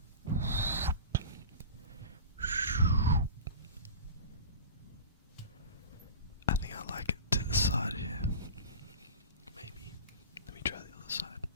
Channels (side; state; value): both; inverted; correlation -0.32